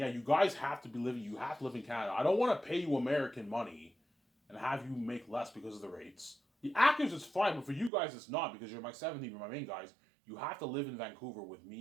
you guys have to live in Canada. I don't want to pay you American money and have you make less because of the rates. The actors is fine, but for you guys it's not because you're my 17, you're my main guys. You have to live in Vancouver with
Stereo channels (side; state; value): left; drops out; at 7.9 s